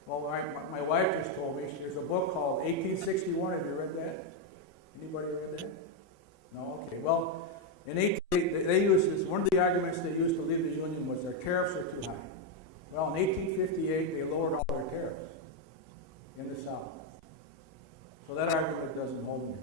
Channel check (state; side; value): normal; both; correlation 0.03